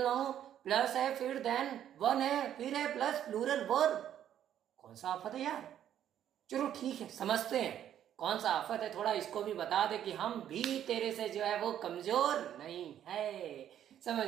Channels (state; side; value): quieter; left; 10.5 dB